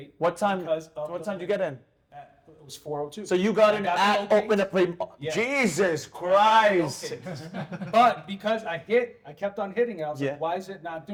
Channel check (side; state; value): both; identical; correlation 1.00